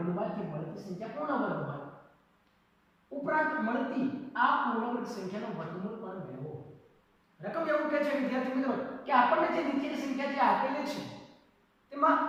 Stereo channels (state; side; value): identical; both; correlation 1.00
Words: મળતી સંખ્યા પૂર્ણ વર્ગ હોય. ઉપરાંત મળતી આ પૂર્ણ વર્ગ સંખ્યાનો વર્ગમૂળ પણ મેળવો. રકમ એવું કહે છે વિદ્યાર્થી મિત્રો કે આપણને જે નીચેની સંખ્યા જે આપેલી છે તેમાં